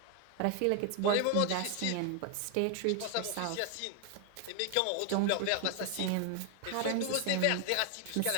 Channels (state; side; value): different; both; correlation 0.00